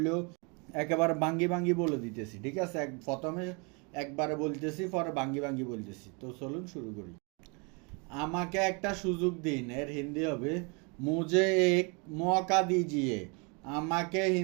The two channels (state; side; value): quieter; left; 32.4 dB